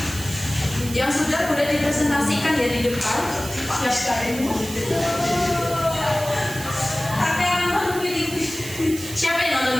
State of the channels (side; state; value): right; noise; hiss, 11 dB below the sound